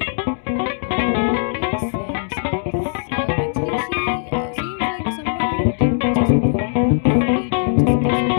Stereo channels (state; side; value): silent; right; digital silence